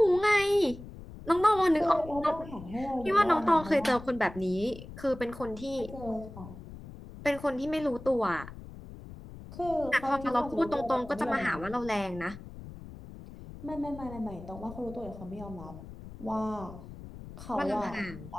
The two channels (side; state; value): left; noise; rumble, 14 dB below the sound